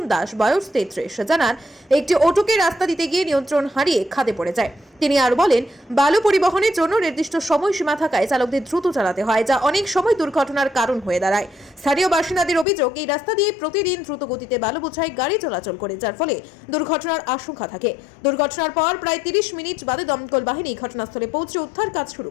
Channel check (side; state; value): right; drops out; at 12.7 s